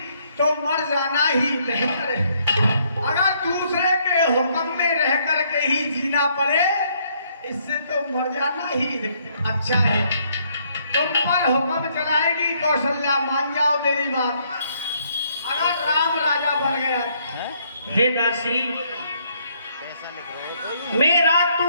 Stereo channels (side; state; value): both; inverted; correlation -0.69